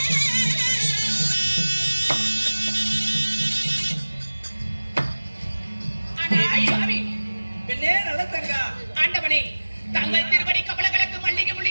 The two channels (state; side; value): inverted; both; correlation -1.00